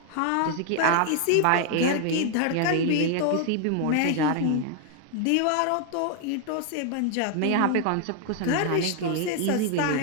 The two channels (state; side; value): different; both; correlation 0.00